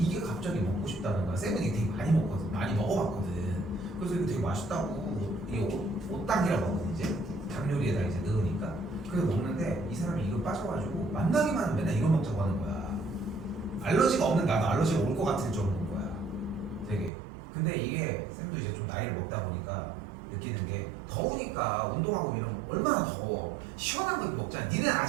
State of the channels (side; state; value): left; drops out; at 17.1 s